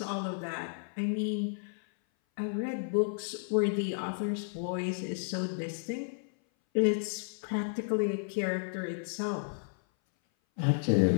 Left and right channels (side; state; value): right; silent; 56 dB below the other